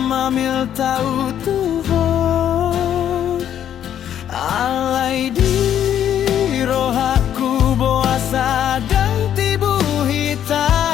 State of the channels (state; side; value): quieter; right; 10.1 dB